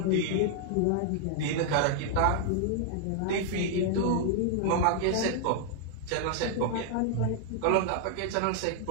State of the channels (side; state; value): both; different; correlation 0.00